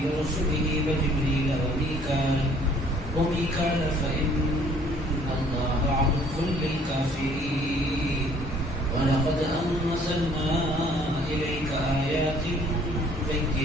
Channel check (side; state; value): both; normal; correlation 0.58